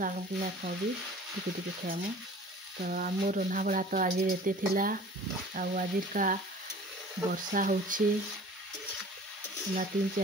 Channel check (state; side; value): normal; both; correlation 0.45